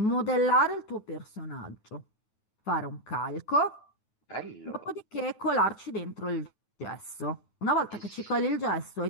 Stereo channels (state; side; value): late; right; 9.3 ms